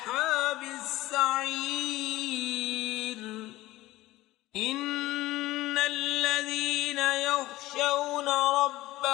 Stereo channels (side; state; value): right; quieter; 17.3 dB